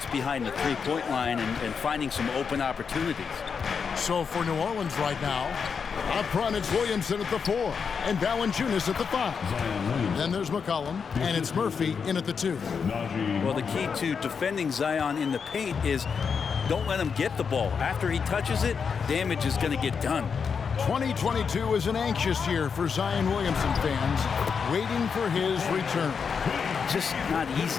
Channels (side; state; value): right; quieter; 6.1 dB